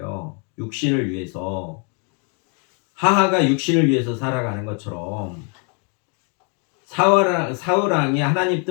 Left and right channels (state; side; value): quieter; right; 37.6 dB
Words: 육신을 위해서. 하하가 육신을 위해서 살아가는 것처럼 사울왕이 하나님